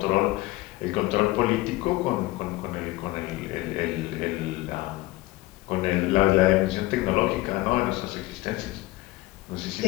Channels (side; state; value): right; quieter; 19.1 dB